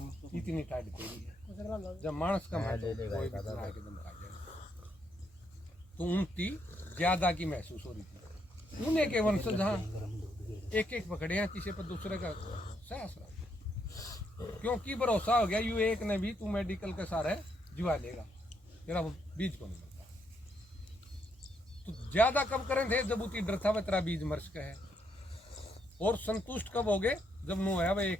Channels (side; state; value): both; normal; correlation 0.76